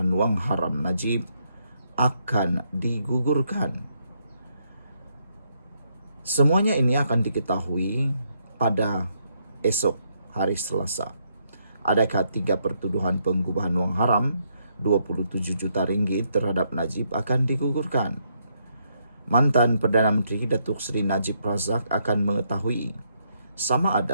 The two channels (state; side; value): inverted; both; correlation -0.75